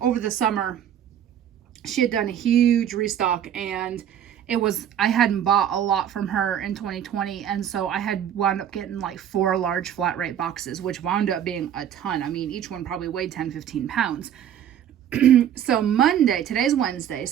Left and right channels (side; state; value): left; quieter; 9.8 dB